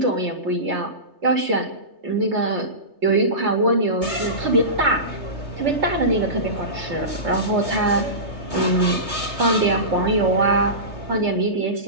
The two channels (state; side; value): late; left; 3.3 ms